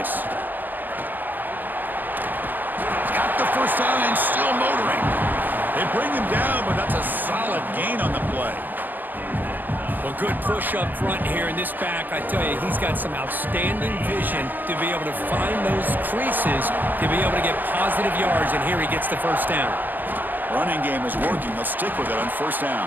The first down and still motoring. They bring him down, but that's a solid gain on the play. Well, good push up front here in this back. I tell you, he's got some outstanding vision to be able to find those creases, to be able to get positive yards, and here he gets the first down. Running game is working. They'll stick with it on first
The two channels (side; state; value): left; late; 0.087 ms